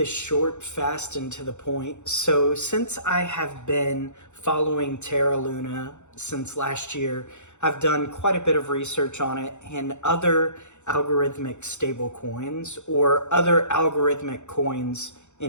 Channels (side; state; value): right; late; 0.83 ms